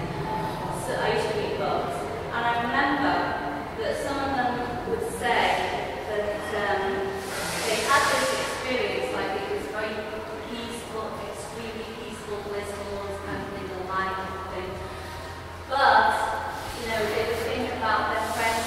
So I used to read books, and I remember that some of them would say that they had this experience, like it was very peaceful, extremely peaceful, blissful, this kind of thing, the light thing. But, they would think about their friends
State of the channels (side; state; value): both; identical; correlation 1.00